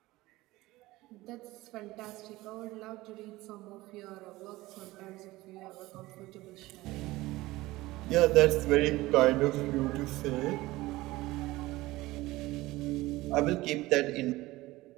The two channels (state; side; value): quieter; left; 18.9 dB